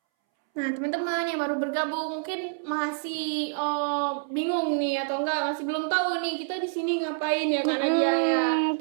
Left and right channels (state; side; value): silent; left; 60 dB below the other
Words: Nah, teman-teman yang baru bergabung mungkin masih bingung nih atau enggak, masih belum tahu nih kita di sini ngapain ya karena dia ya.